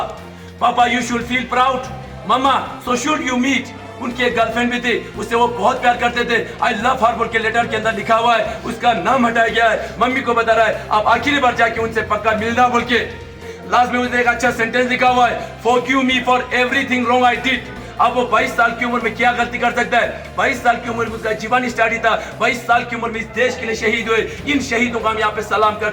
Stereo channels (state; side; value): identical; both; correlation 1.00